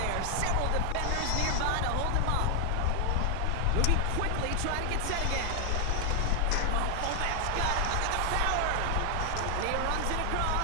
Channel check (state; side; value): different; both; correlation 0.00